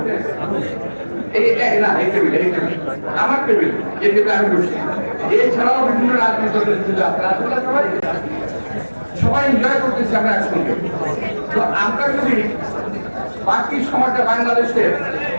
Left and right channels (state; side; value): inverted; both; correlation -1.00